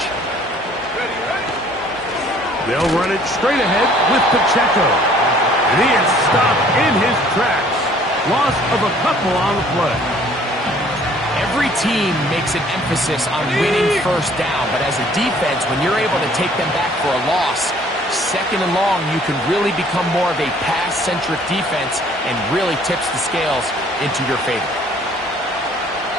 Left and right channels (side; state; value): both; normal; correlation 0.57